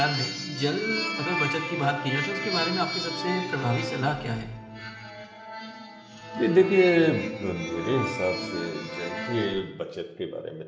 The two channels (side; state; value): both; identical; correlation 1.00